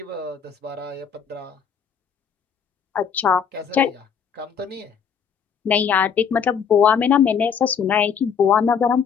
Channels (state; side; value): quieter; right; 7.1 dB